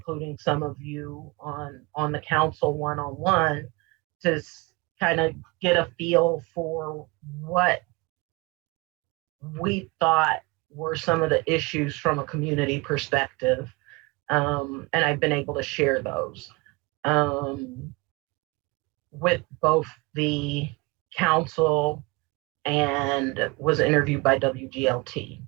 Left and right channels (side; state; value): left; quieter; 25.5 dB